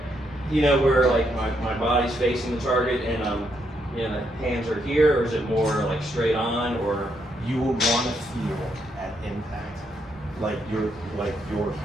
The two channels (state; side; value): normal; both; correlation 0.77